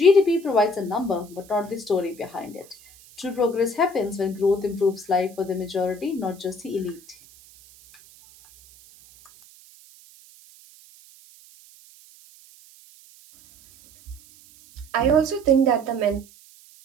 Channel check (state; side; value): noise; right; hiss, 24 dB below the sound